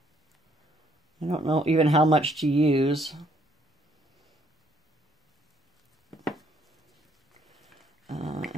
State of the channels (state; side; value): normal; both; correlation 0.67